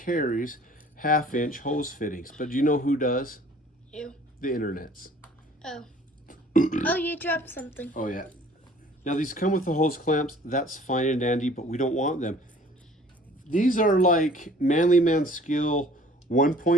1/2-inch hose fittings. But do you know who does? You. The internets. Oh. Oh, you dropped something. Oh yeah. Now these come with the hose clamps. That's fine and dandy, but we don't want them. These are like Manly Man Skill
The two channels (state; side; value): normal; both; correlation 0.52